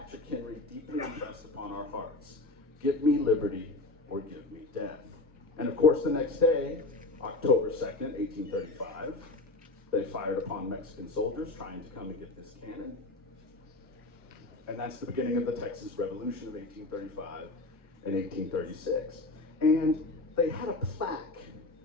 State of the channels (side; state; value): right; quieter; 3.0 dB